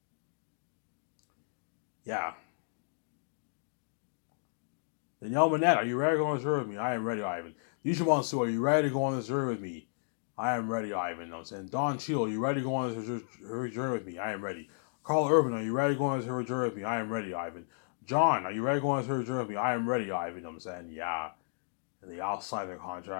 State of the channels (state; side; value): silent; right; digital silence